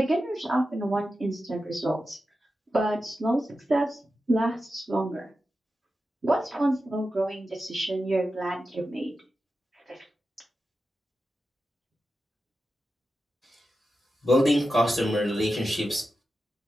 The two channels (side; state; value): both; normal; correlation 0.91